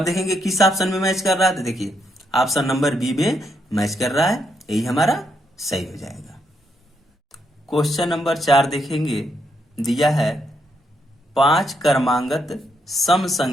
देखेंगे किस ऑप्शन में मैच कर रहा है, तो देखिए ऑप्शन नंबर बी में मैच कर रहा है, यही हमारा सही हो जाएगा। क्वेश्चन नंबर 4 देखेंगे, दिया है 5 क्रमांगत सम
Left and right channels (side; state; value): both; normal; correlation 0.78